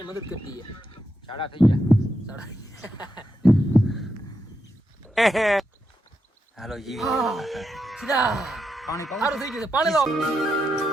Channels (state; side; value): normal; both; correlation 0.84